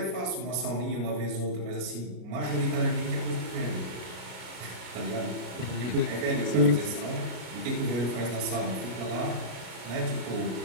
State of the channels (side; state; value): left; late; 33 ms